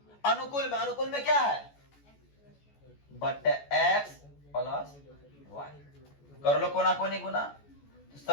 अनुकूल में क्या है बट x प्लस y, कर लो कोना कोनी गुना, तो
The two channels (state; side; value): late; right; 14 ms